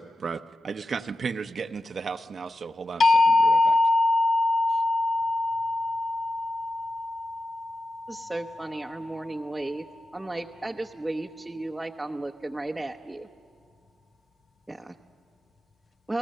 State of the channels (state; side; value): normal; both; correlation 0.92